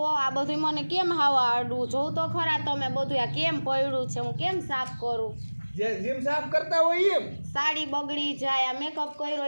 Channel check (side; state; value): both; inverted; correlation -1.00